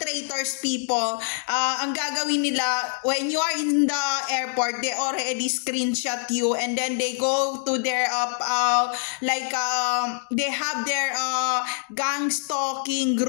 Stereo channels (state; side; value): silent; right; 62 dB below the other